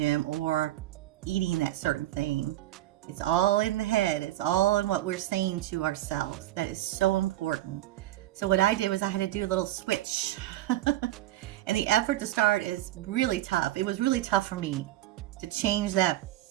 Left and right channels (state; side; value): quieter; left; 14.9 dB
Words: or eating that certain thing. It's all in the head. It's all in what we're saying to ourselves. That is so important. So what I did was I had to do a little switch. And the effort to start is really tough. It was really tough for me to change that